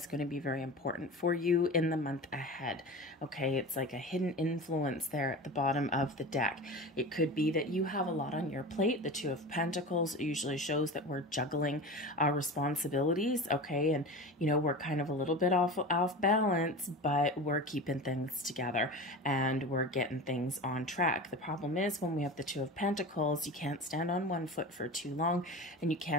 going to be very important for you in the month ahead. Okay, it's like a hidden influence there at the bottom of the deck. It could be that you have a lot on your plate. The Two of Pentacles usually shows that we're juggling our responsibilities. Okay, and we're kind of a little bit off balance, but we're keeping things together and we're getting things on track. The problem is when we have the Two of Pentacles, you can't stand on one foot for too long and you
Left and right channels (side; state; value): both; normal; correlation 0.31